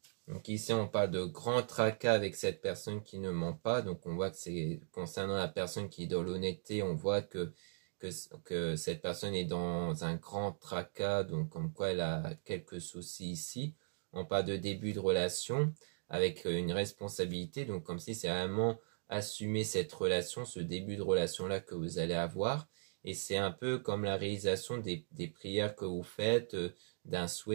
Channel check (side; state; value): left; silent; digital silence